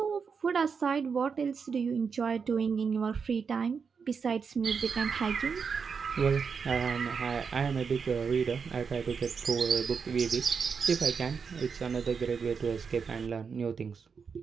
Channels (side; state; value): left; quieter; 5.9 dB